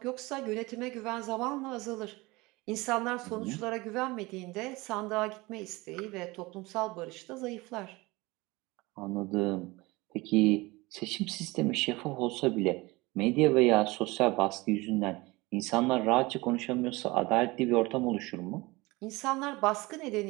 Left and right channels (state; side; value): quieter; left; 22.5 dB